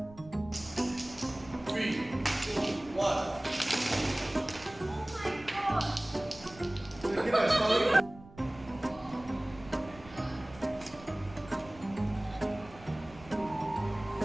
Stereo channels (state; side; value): noise; right; rumble, 20 dB below the sound